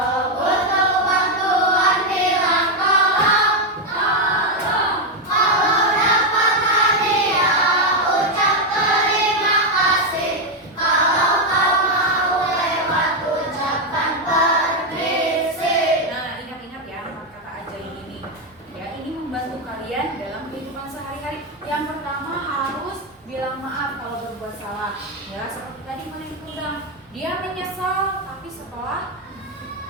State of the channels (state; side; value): normal; both; correlation 0.05